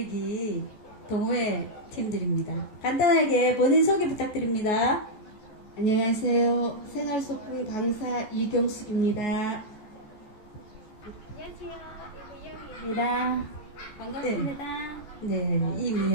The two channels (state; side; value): late; right; 14 ms